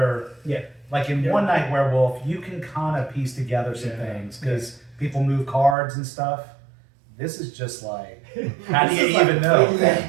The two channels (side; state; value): left; drops out; at 5.8 s